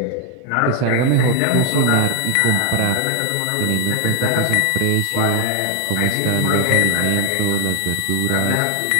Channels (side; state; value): both; different; correlation 0.00